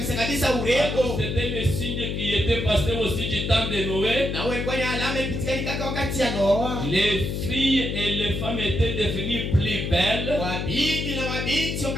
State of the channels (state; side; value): noise; left; hum, 2 dB below the sound